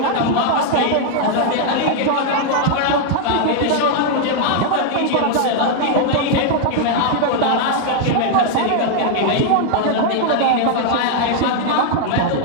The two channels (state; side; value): different; both; correlation 0.00